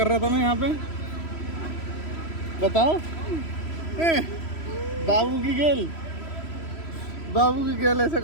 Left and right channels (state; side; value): late; right; 3.0 ms